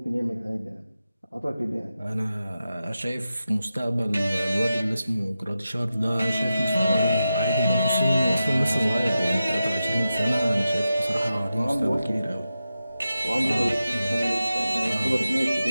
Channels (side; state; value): both; inverted; correlation -0.91